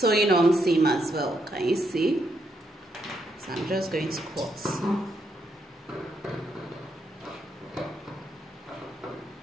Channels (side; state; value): both; normal; correlation 0.78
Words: on seam as well. Can you see? So I'm just going to cut.